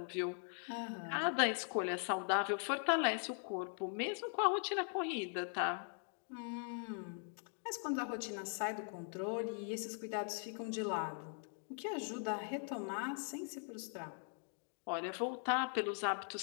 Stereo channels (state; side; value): silent; right; 50 dB below the other